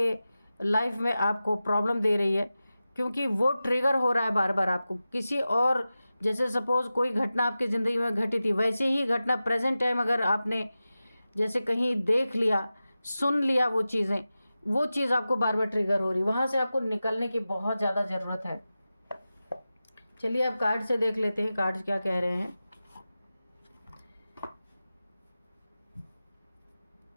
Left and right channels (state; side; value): inverted; both; correlation -0.94